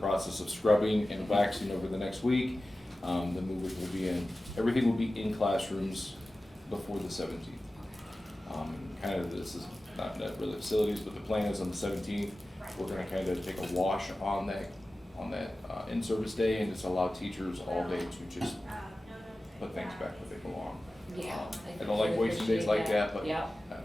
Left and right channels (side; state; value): both; normal; correlation 0.95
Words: of scrubbing and waxing over the next week. The movers will be in, everything will be in classrooms before the 17th. Kind of, this is not really facilities, but the plan is on the 17th, we're gonna kind of take a wash on that in-service day and just allow teachers all day to just put things back where they belong. Yeah. I don't like wasting days like that, but Yeah, I